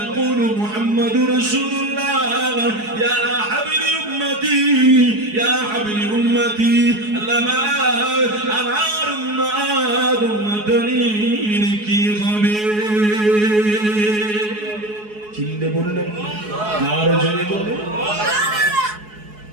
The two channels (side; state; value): left; late; 4.7 ms